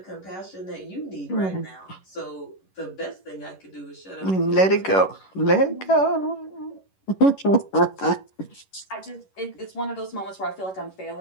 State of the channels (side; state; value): right; late; 11 ms